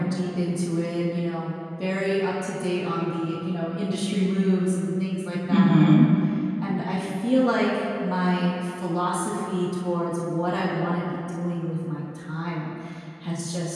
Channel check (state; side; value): identical; both; correlation 1.00